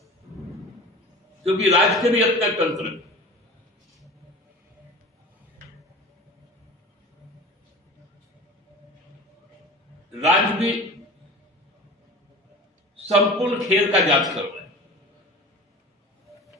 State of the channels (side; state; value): both; normal; correlation 0.36